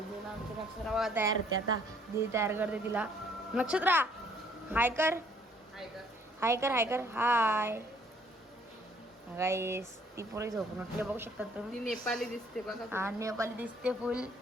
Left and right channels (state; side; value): normal; both; correlation 0.62